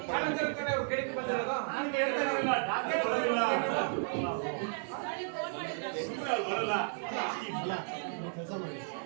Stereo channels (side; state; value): left; silent; 55 dB below the other